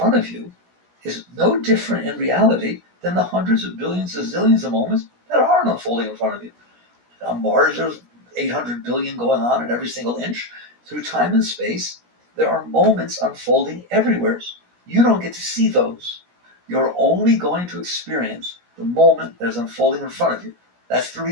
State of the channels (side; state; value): left; late; 17 ms